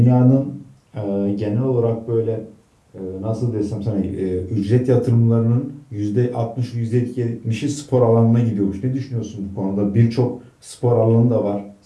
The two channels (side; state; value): both; identical; correlation 1.00